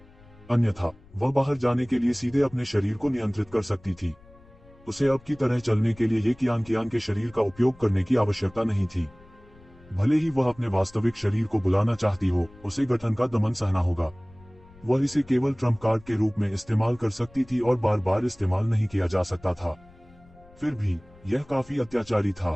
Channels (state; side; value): noise; left; rumble, 25 dB below the sound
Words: अन्यथा वह बाहर जाने के लिए सीधे अपने शरीर को नियंत्रित कर सकती थी। उसे अब की तरह चलने के लिए ये कियान के शरीर का उपयोग करने की आवश्यकता नहीं थी। भले ही वह अपने वास्तविक शरीर को बुलाना चाहती हो, उसे गठन का दमन सहना होगा। वह इसे केवल ट्रम्प कार्ड के रूप में इस्तेमाल कर सकती थी और बार बार इस्तेमाल नहीं किया जा सकता था। फिर भी यह काफी अत्याचारी